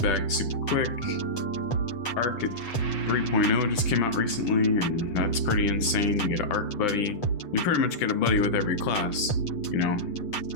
back super quick. Arc 3.0 just came out recently, and that's pretty insane. You get an arc buddy. You pretty much get a buddy with every class,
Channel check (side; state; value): right; late; 8.1 ms